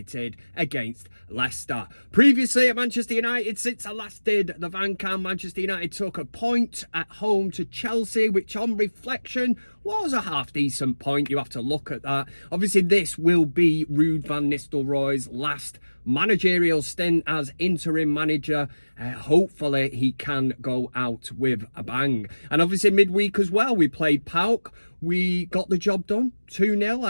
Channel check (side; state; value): both; inverted; correlation -1.00